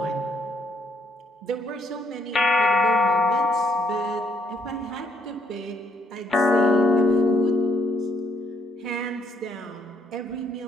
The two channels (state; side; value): normal; both; correlation 0.71